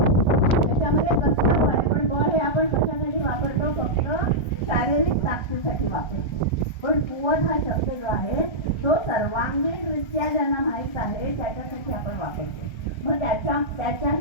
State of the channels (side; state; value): right; late; 1.3 ms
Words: त्याच्यामध्ये कसलं बळ आहे? पण बळ हे आपण कशासाठी वापरतो? फक्त शारीरिक ताकदीसाठी वापरतो. पण कुवत हा शब्द जो आहे तो सर्वांगीणरित्या ज्यांना माहीत आहे त्याच्यासाठी आपण वापरतो. मग